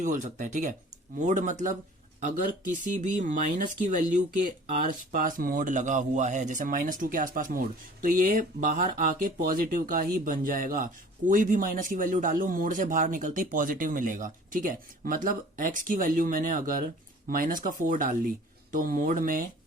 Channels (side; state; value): both; normal; correlation 0.47